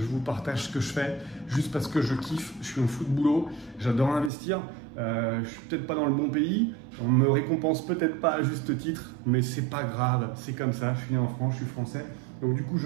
vous partage ce que je fais, juste parce que je kiffe, je suis un fou de boulot, j'adore investir, je suis peut-être pas dans le bon pays, on me récompense peut-être pas à juste titre, mais c'est pas grave, c'est comme ça, je suis né en France, je suis français, donc du coup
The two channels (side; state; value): left; drops out; at 4.3 s